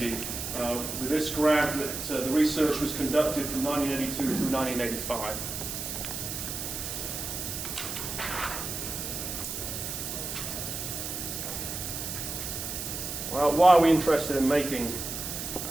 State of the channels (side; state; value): right; noise; hiss, 5 dB below the sound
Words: with this grant that the research was conducted from 1982 through 1985. Well, why are we interested in making